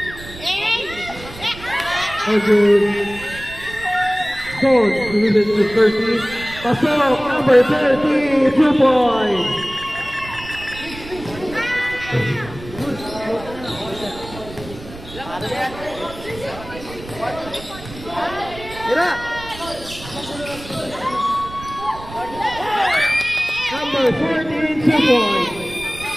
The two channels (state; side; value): noise; right; rumble, 15 dB below the sound